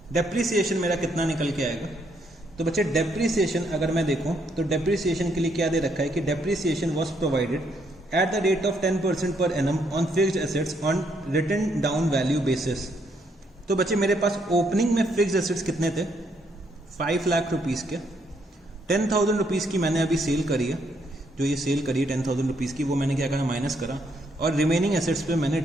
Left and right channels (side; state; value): both; normal; correlation 0.73